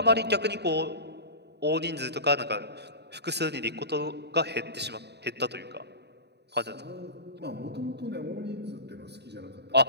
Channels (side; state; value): left; late; 0.49 ms